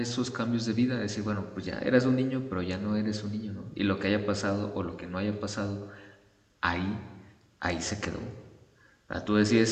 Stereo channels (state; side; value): identical; both; correlation 1.00